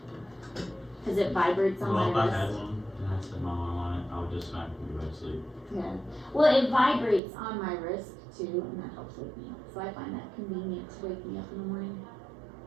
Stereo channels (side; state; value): left; drops out; at 7.2 s